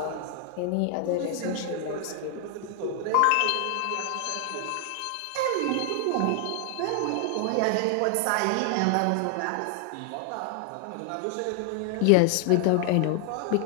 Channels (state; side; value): different; both; correlation 0.00